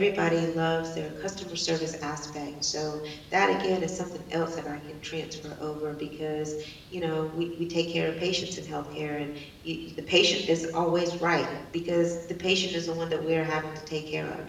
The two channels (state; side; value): identical; both; correlation 1.00